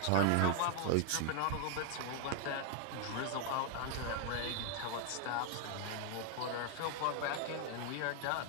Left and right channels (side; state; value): both; different; correlation 0.00